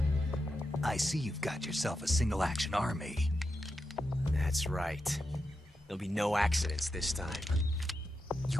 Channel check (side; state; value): both; normal; correlation 0.88